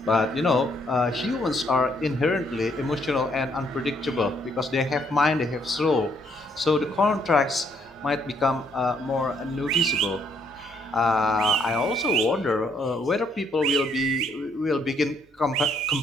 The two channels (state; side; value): normal; both; correlation 0.70